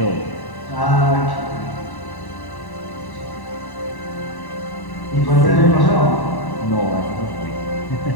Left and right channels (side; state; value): right; late; 1.1 ms